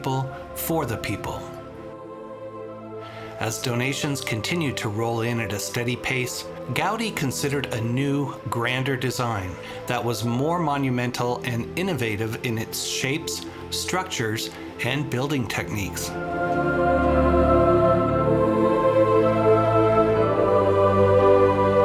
for the people. As donations continued to roll in at a steady pace, Gaudí considered a new, grander design that was more monumental and innovative in its shapes, structures, and building techniques.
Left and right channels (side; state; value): both; identical; correlation 1.00